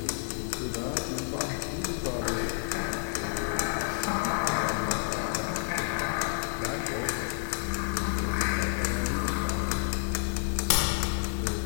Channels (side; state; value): right; silent; 58 dB below the other